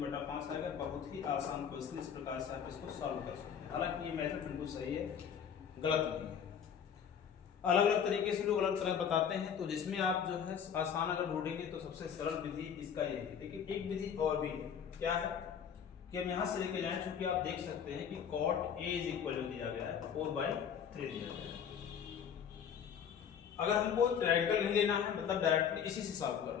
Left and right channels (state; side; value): quieter; right; 7.8 dB